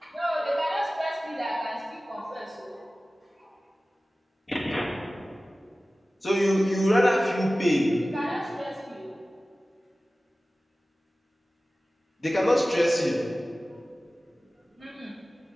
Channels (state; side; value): normal; both; correlation 0.97